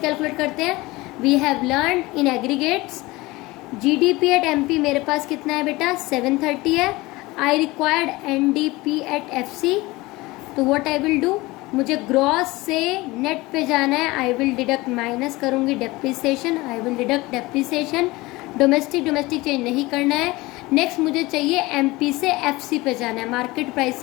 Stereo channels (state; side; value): quieter; right; 21.1 dB